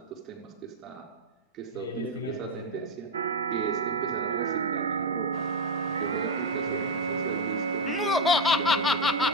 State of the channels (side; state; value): both; normal; correlation 0.06